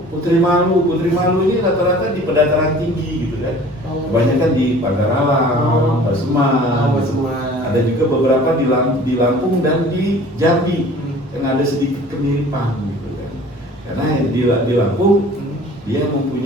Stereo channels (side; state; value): both; normal; correlation 0.47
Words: Putri Malu ini rata-rata di pedataran tinggi gitu kan. Kebanyakan di Pagar Alam, Paseman. Ada juga beberapa di Lampung dan di Jambi yang ada sedikit kemiripan gitu kan. Karena di Lampung dia